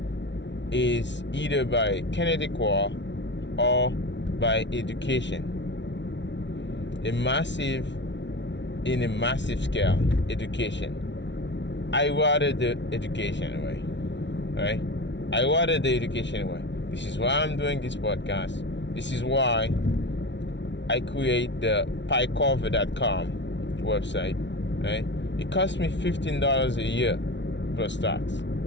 is either by kinetic war or by education. In a massive scale, education. I rather the education way, right? I rather the education way. This is why I'm doing this podcast. This is why I create the piecover.com website, right? It costs me $15 a year plus tax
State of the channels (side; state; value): right; late; 0.52 ms